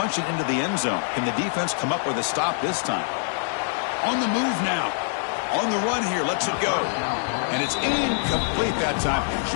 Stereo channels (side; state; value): right; silent; digital silence